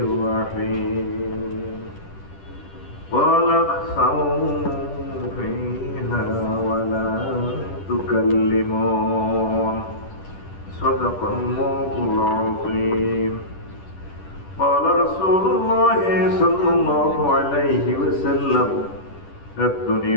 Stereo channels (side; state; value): right; late; 10 ms